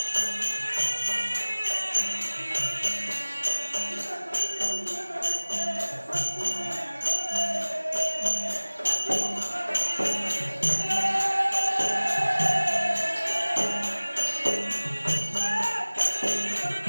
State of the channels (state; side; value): inverted; both; correlation -1.00